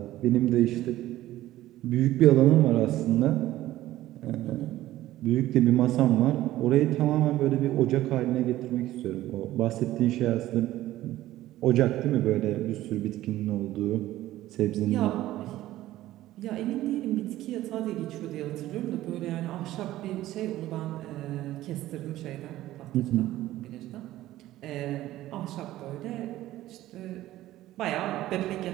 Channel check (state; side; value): quieter; left; 15.0 dB